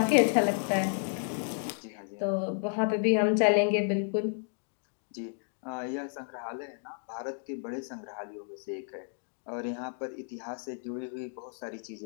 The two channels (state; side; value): silent; right; 56 dB below the other